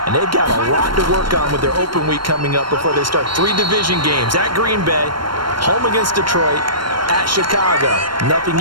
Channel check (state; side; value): late; left; 0.72 ms